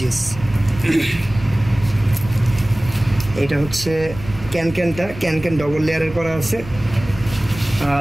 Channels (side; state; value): right; noise; rumble, 14 dB below the sound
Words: এটা হচ্ছে ক্যানক্যানটা, ক্যানক্যান ডবল লেয়ারের করা আছে।